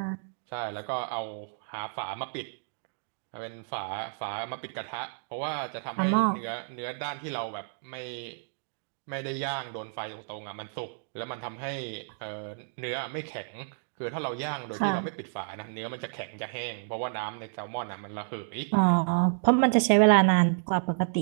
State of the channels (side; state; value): left; silent; 57 dB below the other